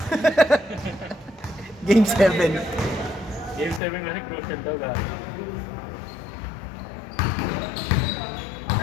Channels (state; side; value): drops out; right; at 3.8 s